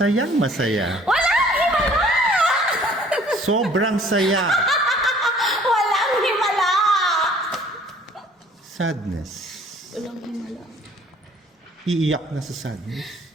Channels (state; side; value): normal; both; correlation 0.55